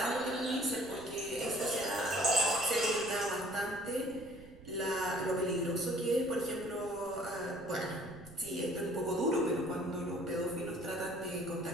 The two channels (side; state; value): right; noise; rumble, 20 dB below the sound